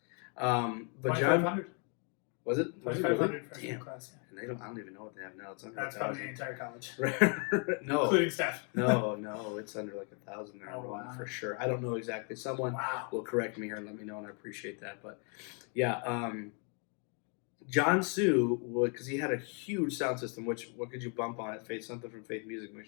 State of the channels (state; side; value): quieter; right; 39.2 dB